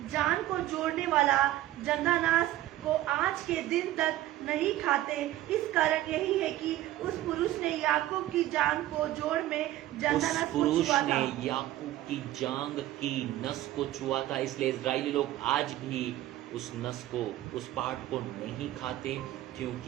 जान को जोड़ने वाला जंदानास को आज के दिन तक नहीं खाते, इस कारण यही है कि उस पुरुष ने याकूब की जांग को जोड़ में जंदानास को छुआ था। याकूब की जांग की नस को छुआ था, इसलिए इजरायली लोग आज भी उस नस को, उस पार्ट को नहीं खाते,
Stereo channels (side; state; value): left; quieter; 14.7 dB